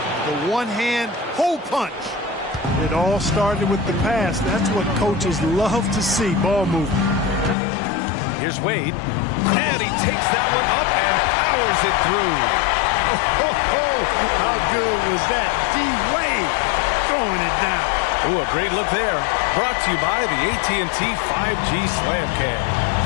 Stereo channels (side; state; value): right; drops out; at 7.6 s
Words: The one-hand hole punch. It all started with the pass. That's what coaches love to see, ball movement. Here's Wade. And he takes that one up and powers it through. Oh, how good was that? D-Wade throwing it down. Ooh, a great look there. Brought to you by the AT&T 5G Slam Cam.